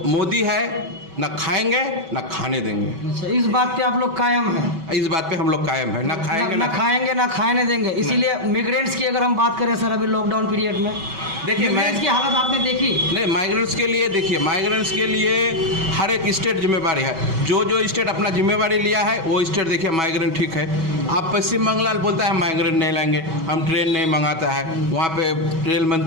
मोदी है, ना खाएंगे ना खाने देंगे। अच्छा, इस बात पे आप लोग कायम हैं? इस बात पे हम लोग कायम है, ना खाएंगे ना खाने देंगे। इसीलिए मिग्रेंट्स की अगर हम बात करें सर, अभी लॉकडाउन पीरियड में देखिए माइग्रेंट्स की हालत आपने देखी? नहीं, माइग्रेंट्स के लिए देखिए, माइग्रेंट्स के लिए हर एक स्टेट जिम्मेवारी है। जो स्टेट अपना जिम्मेवारी लिया है वो स्टेट देखिए माइग्रेंट ठीक है। आप पश्चिम बंगाल बोलता है माइग्रेंट नहीं लाएंगे, हम ट्रेन नहीं मंगाता है। वहाँ पे रेल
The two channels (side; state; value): left; late; 6.2 ms